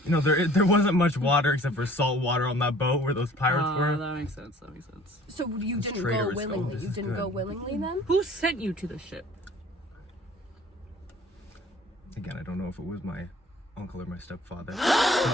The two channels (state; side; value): normal; both; correlation 0.51